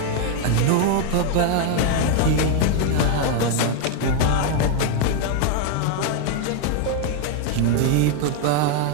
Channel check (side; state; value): both; different; correlation 0.01